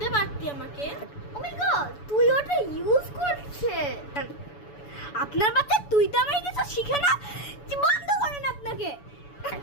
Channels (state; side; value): late; right; 7.0 ms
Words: পারতি আমাকে। ও মাই গড, তুই ওটা ইউজ করছে। আপনার বাচ্চা তুই তো আমাকে কিছু শিখে না, বন্ধ করেন আপনাকে।